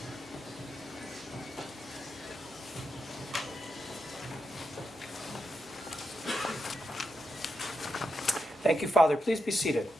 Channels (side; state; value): both; normal; correlation 0.85